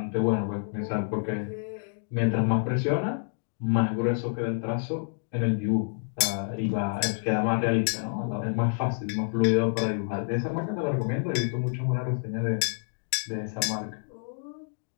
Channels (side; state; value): right; silent; digital silence